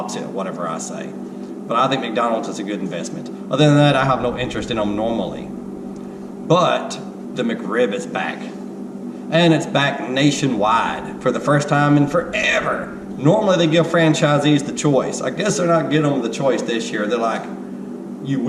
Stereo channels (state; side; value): identical; both; correlation 1.00